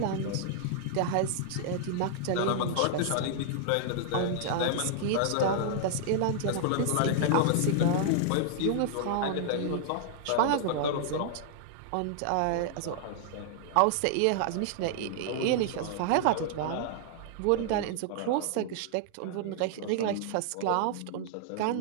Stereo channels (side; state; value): both; different; correlation -0.01